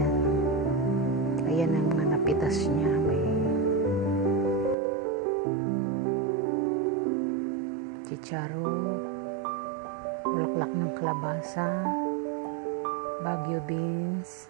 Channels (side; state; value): left; drops out; at 4.8 s